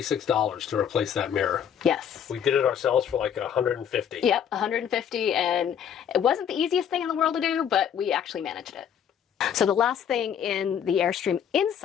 to replace that mirror. Yes. We did it ourselves for like $150. Yep, $150, and it wasn't the easiest thing in the world to do, but we actually managed it. So the last thing in the Airstream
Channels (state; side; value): quieter; right; 8.6 dB